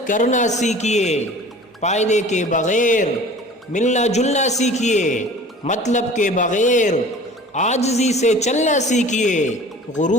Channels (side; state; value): both; normal; correlation 0.44